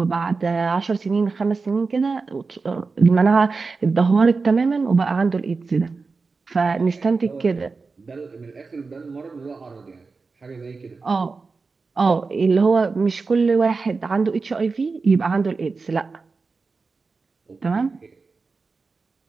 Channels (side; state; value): left; quieter; 4.3 dB